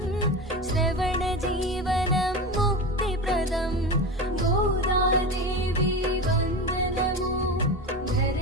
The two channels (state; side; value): normal; both; correlation 0.25